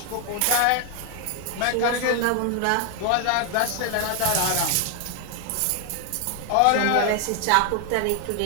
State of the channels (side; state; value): both; different; correlation 0.00